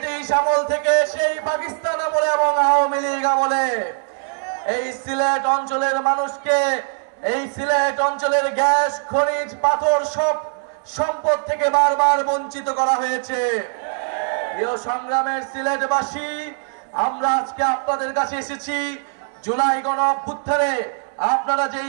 আমল থেকে, সেই পাকিস্তান আমলে এবং আওয়ামী লীগ আমলে। এই সিলেট অঞ্চলের মানুষকে, এই সিলেট অঞ্চলের গ্যাস, খনিজ, পাথর সব সম্পদ থেকে বারবার বঞ্চিত করা হয়েছে। প্রিয় সংগ্রামের সিলেটবাসী, আমরা আজকে আপনাদের কাছে এসেছি জুলাই গণ অভ্যুত্থানে আপনারা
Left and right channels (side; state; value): left; silent; digital silence